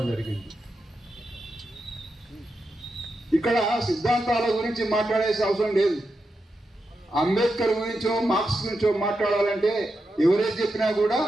జరిగింది. ఇక్కడ సిద్ధాంతాల గురించి మాట్లాడేసే అవసరం లేదు. అంబేద్కర్ గురించో, మార్క్స్ గురించో మాట్లాడాలంటే ఎవరైతే చెప్పినా కూడా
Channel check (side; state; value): both; normal; correlation 0.87